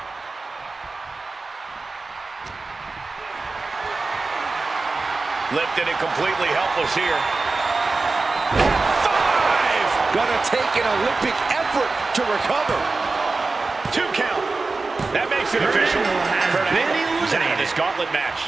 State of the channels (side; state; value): left; quieter; 3.8 dB